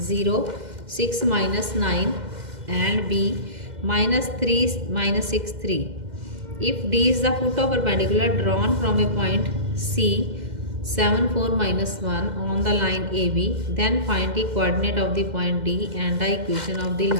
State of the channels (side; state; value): left; late; 2.1 ms